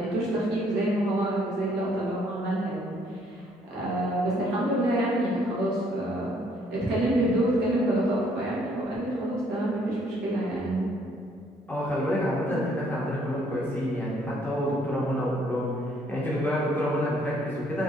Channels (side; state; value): both; normal; correlation 0.65